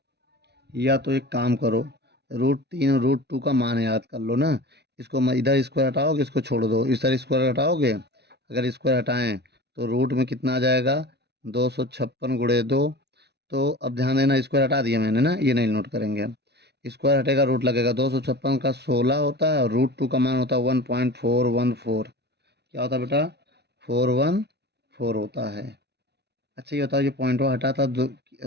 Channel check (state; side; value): late; left; 0.49 ms